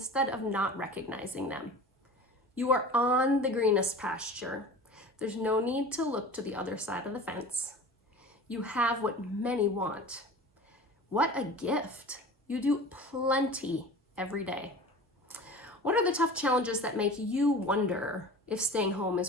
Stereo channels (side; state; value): both; normal; correlation 0.38